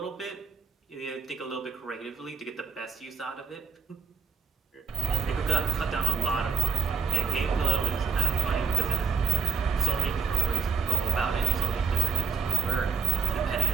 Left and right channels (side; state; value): left; quieter; 7.3 dB